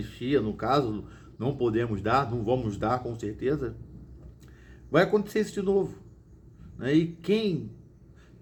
no caso, não podemos dar, não vamos dar com certeza, vai acontecer isso de novo. E quem,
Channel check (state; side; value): identical; both; correlation 1.00